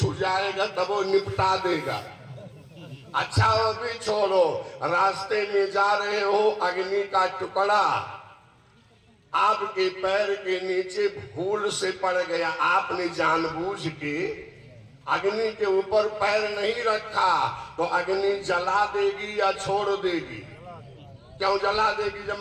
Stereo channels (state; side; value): identical; both; correlation 1.00